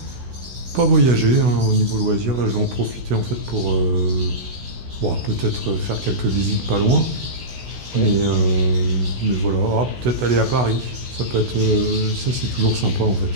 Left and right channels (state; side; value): late; left; 16 ms